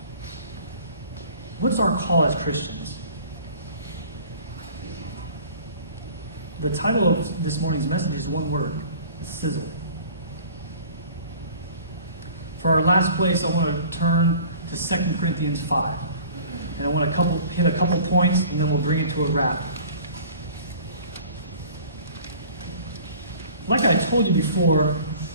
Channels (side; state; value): both; inverted; correlation -0.47